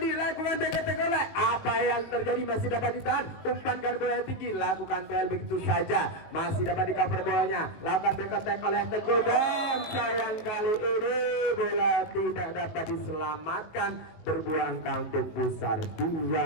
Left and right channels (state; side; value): late; right; 19 ms